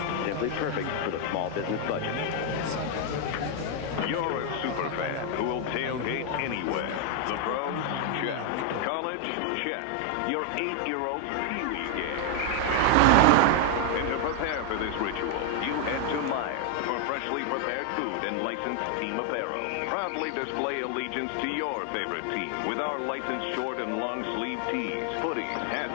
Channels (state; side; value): different; both; correlation 0.01